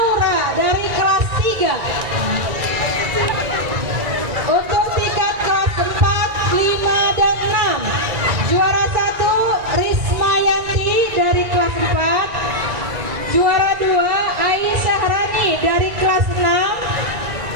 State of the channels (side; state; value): left; late; 1.9 ms